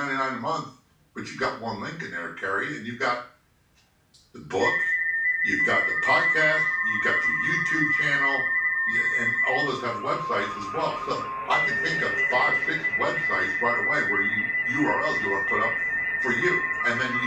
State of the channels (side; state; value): both; identical; correlation 1.00